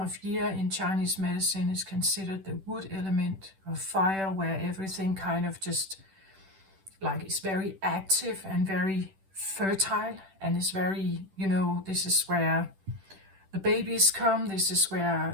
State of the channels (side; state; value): left; late; 10 ms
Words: year in Chinese medicine is considered the wood element of fire, where everything kind of just is very active and very fertile, and is very, this is where the babies come, this is